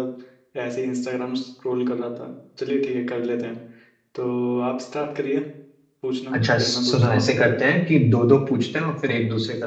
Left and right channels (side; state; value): both; identical; correlation 1.00